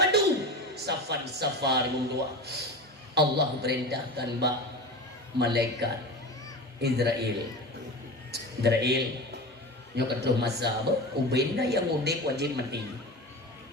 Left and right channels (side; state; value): both; normal; correlation 0.28